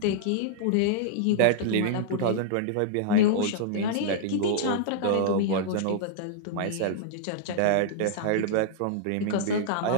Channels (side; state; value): both; different; correlation -0.02